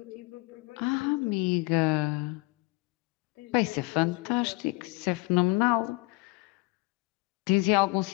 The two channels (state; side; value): quieter; right; 25.7 dB